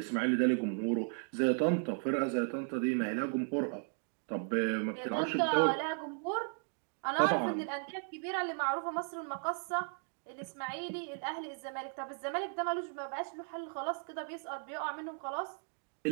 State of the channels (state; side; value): silent; left; 54 dB below the other